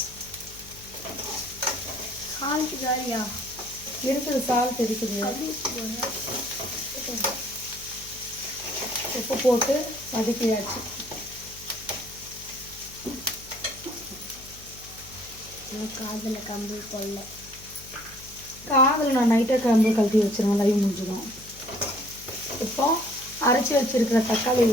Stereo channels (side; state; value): left; noise; hum, 20 dB below the sound